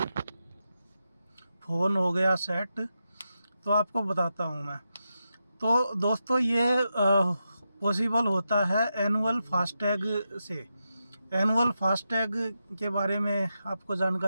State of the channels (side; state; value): both; inverted; correlation -0.87